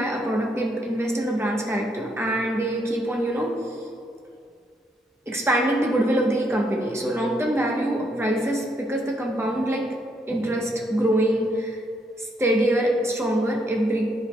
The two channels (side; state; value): both; normal; correlation 0.74